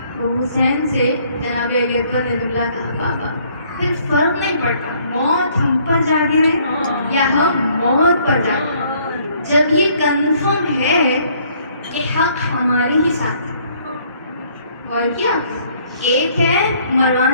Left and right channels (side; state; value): both; inverted; correlation -0.63